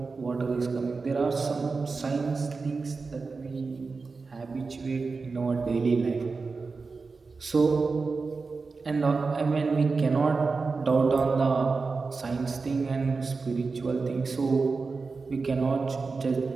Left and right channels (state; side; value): quieter; left; 4.3 dB